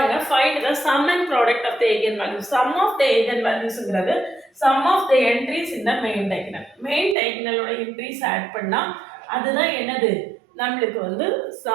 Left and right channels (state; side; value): drops out; left; at 7.2 s